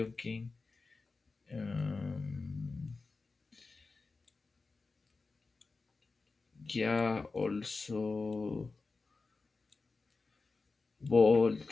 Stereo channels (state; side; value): quieter; right; 4.0 dB